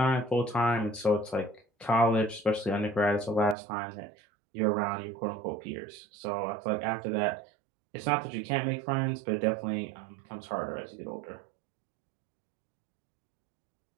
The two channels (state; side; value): drops out; left; at 3.6 s